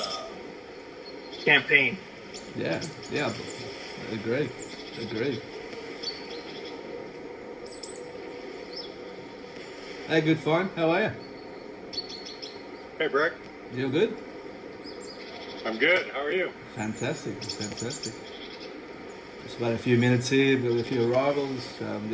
campaign. Yeah, agree. Hey, good fine. How are you? Hey, Brick. You good? I'm good. How are you? Fantastic. Just about a few minutes here with a few arrivals.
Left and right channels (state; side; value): identical; both; correlation 1.00